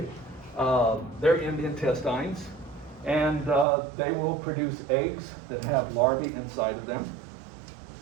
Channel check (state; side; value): drops out; left; at 3.7 s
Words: they're in the intestines, and they will produce eggs that have larvae inside of them.